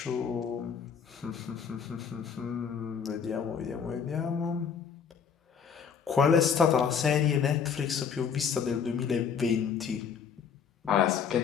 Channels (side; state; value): right; quieter; 7.0 dB